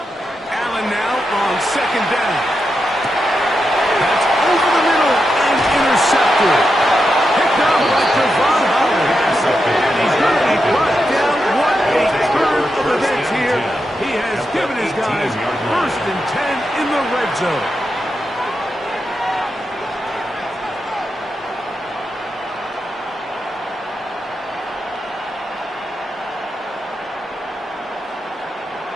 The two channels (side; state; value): both; normal; correlation 0.87